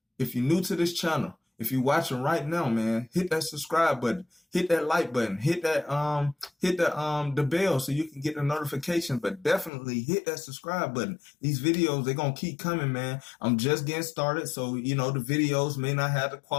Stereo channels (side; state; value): right; drops out; at 9.7 s